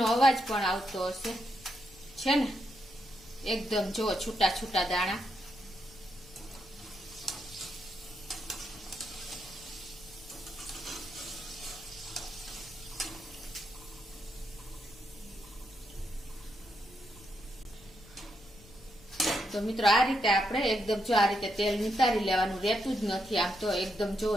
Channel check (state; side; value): noise; left; rumble, 23 dB below the sound